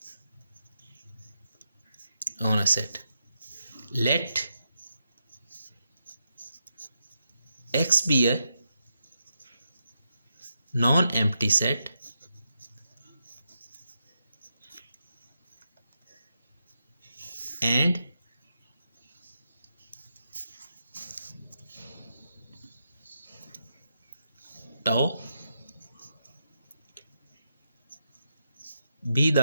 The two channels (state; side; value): inverted; both; correlation -0.84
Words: on a set. Let X be a non-empty set and tau be